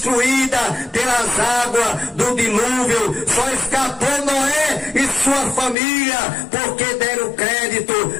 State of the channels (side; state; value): right; drops out; at 5.8 s